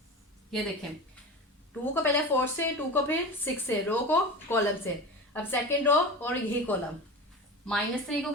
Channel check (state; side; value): normal; both; correlation 0.30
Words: ये देखें 2 को पहले 4 से, 2 को फिर 6 से, रो को कॉलम से। अब सेकेंड रो और यही कॉलम, -3 को